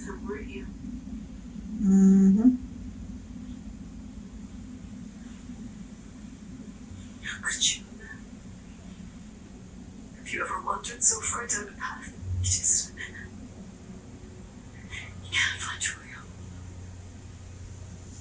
him, weren't you? Mm-hmm. How could you? Have you ever wandered so far down a path? You just... You can't find your way home.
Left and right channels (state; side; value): identical; both; correlation 1.00